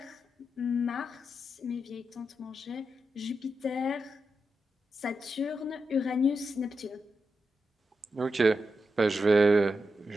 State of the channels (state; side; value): normal; both; correlation 0.87